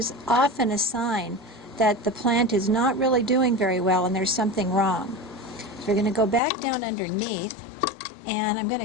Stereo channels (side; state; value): right; drops out; at 6.4 s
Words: often a sign that the plant is not really doing very well and there's something wrong. So we're going to go back down underneath, and I'm going to